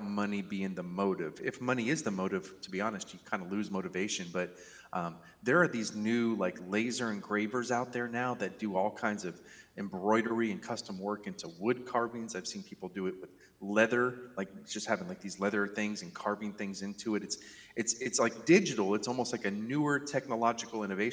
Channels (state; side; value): identical; both; correlation 1.00